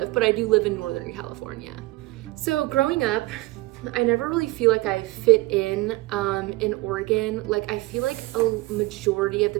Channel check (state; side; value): quieter; left; 20.7 dB